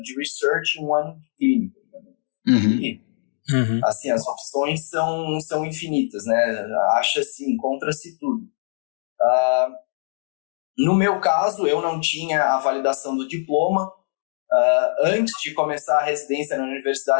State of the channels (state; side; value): silent; right; digital silence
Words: de research e 1 ano de clínico. E, assim, as opções são infinitas, né? Acha-se, encontra-se tudo. No meu caso, eu não tinha a validação do diploma. Antes de começar a residência na